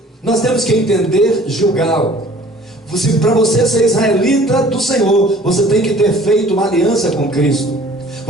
nós temos que entender Gilgal. Para você ser israelita do Senhor, você tem que ter feito uma aliança com Cristo.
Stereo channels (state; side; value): normal; both; correlation 0.51